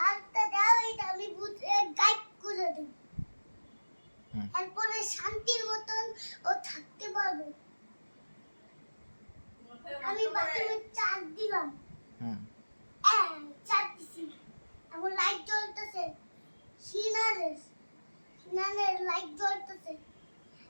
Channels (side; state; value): both; inverted; correlation -1.00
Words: দাও, এটা আমি ভূতকে গাইড করে দেব। এরপরে শান্তির মতন ও থাকতে পারবে। আমি বাথরুমে চার্জ দিলাম, চার্জ দিছি, এখন লাইট জ্বলতেছে, সিনারের লাইট জ্বলতেছে।